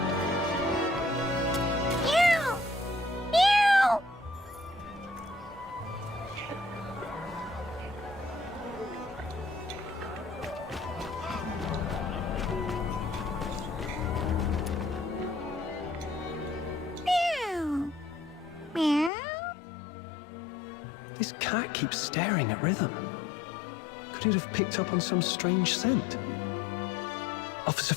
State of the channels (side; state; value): right; drops out; at 19.1 s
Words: Meow! Meow! Meow! Meow! This cat keeps staring at Rhythm. Could it have picked up on some strange scent? Officer